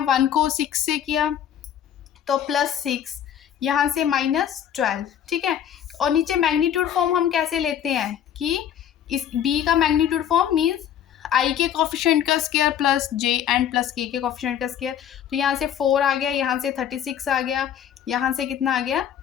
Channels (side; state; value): right; quieter; 9.7 dB